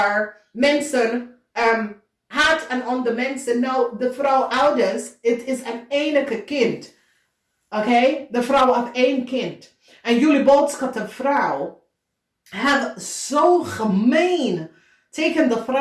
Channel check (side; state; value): both; identical; correlation 1.00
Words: mensen haat aan andere mensen. Nou, de vrouw ouders, het is een enige kind. Oké, de vrouw heeft 1 kind. En jullie boodschap, de vrouw, hebben zo gemeen tegen de